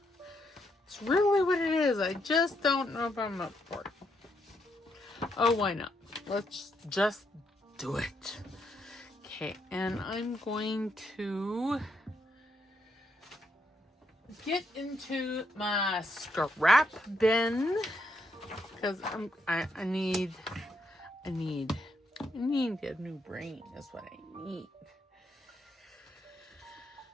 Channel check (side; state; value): both; normal; correlation 0.78